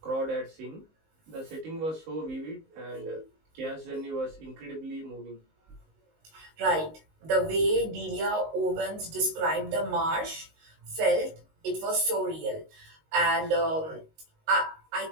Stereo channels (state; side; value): late; left; 19 ms